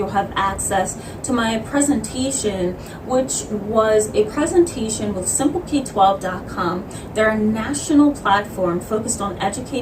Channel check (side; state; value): both; identical; correlation 1.00